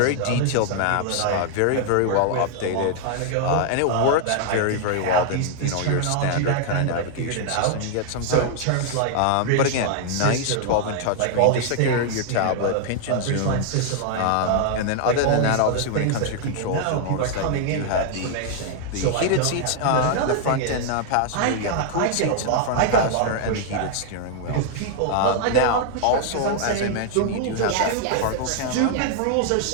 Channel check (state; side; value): different; both; correlation 0.00